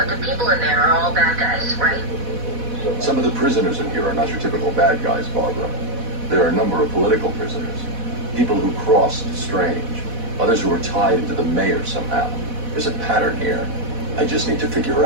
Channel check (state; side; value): late; left; 4.1 ms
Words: the people in there are all bad guys, right? Some of the prisoners in here are not your typical bad guys, Barbara. There are a number of political prisoners. People who crossed strange. Others who are tied into the mayor somehow. There's a pattern here. I just need to figure